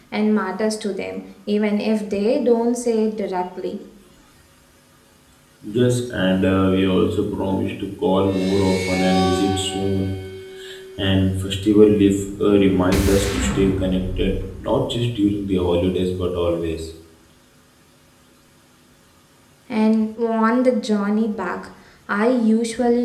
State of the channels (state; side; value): identical; both; correlation 1.00